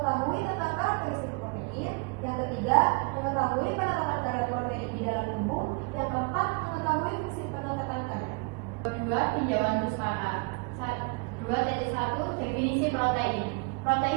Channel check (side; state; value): left; quieter; 31.9 dB